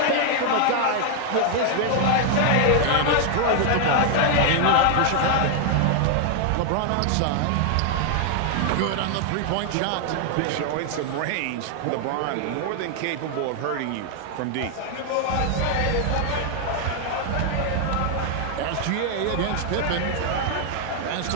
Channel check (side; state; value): both; different; correlation 0.00